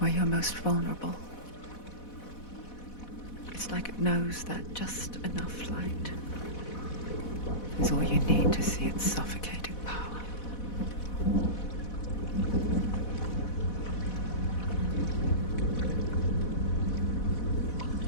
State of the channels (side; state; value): right; late; 4.1 ms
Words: you're most vulnerable. It's like it knows that just enough light is all you need to see its suffocating power.